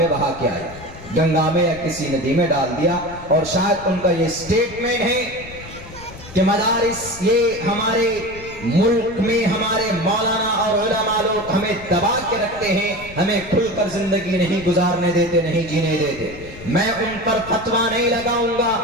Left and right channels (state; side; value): noise; left; rumble, 16 dB below the sound